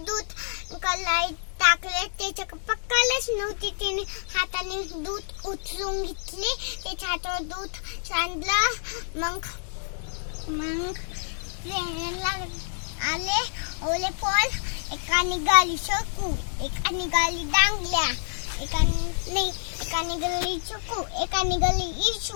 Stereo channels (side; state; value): right; silent; digital silence